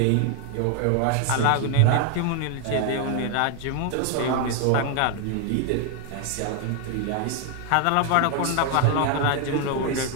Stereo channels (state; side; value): different; both; correlation 0.00